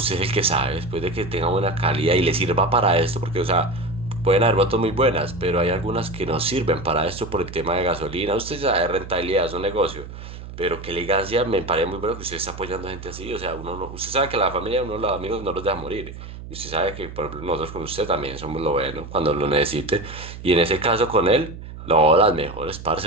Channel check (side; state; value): right; noise; hum, 12 dB below the sound